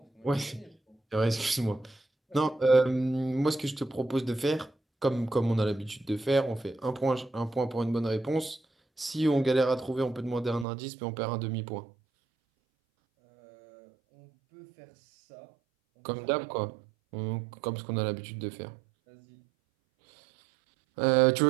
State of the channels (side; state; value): left; drops out; at 10.7 s